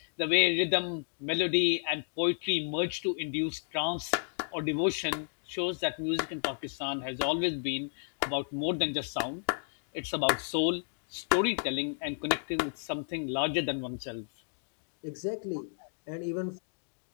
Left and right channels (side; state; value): right; silent; digital silence